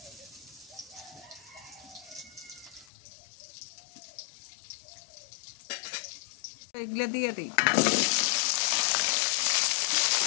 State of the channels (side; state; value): right; drops out; at 2.9 s